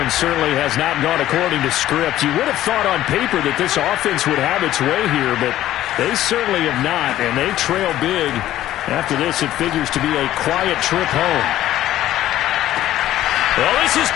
certainly has not gone according to script. You would have thought on paper that this offense would have its way here, but they certainly have not, and they trail big. After this, it figures to be a quiet trip home. Well, this is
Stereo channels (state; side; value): quieter; right; 13.6 dB